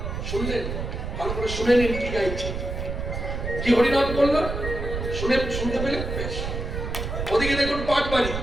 শুনলেন? ভালো করে শুনে নিন কি গাইছে, কি হরিনাম করলো, শুনতে পেলে বেশ। ওদিকে দেখুন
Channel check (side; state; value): right; noise; rumble, 4 dB below the sound